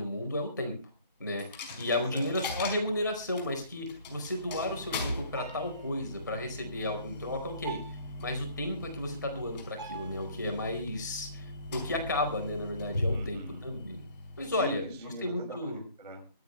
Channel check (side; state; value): both; inverted; correlation -0.56